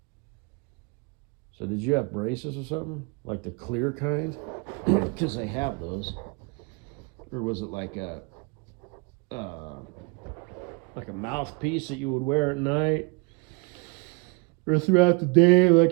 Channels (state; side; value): quieter; left; 30.1 dB